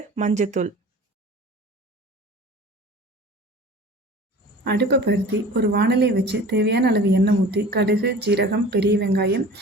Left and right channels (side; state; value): both; normal; correlation 0.41